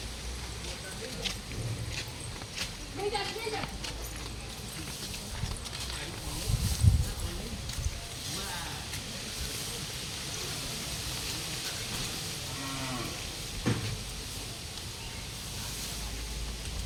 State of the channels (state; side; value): identical; both; correlation 1.00